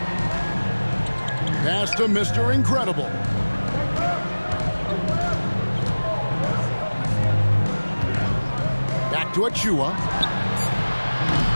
Pass to Mr. Incredible. to Achua.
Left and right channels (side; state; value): both; inverted; correlation -1.00